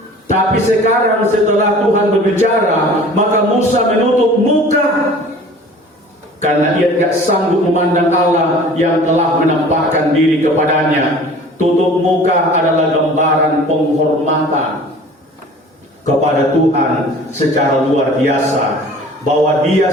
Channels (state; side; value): normal; both; correlation 0.46